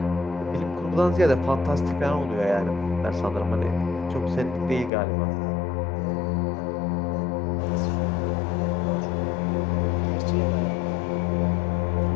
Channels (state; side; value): drops out; right; at 4.9 s